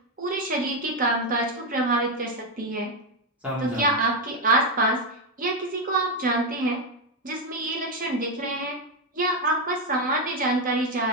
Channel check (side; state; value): both; normal; correlation 0.06